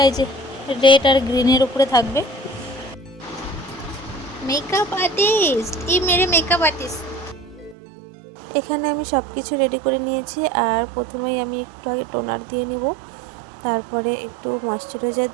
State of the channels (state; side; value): drops out; left; at 7.8 s